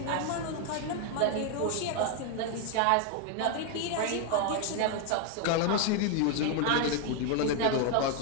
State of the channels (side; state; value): both; different; correlation 0.01